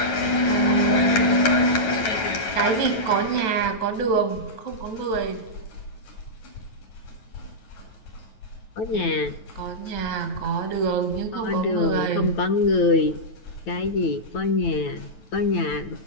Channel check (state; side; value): late; right; 9.2 ms